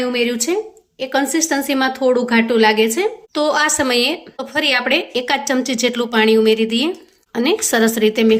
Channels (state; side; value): identical; both; correlation 1.00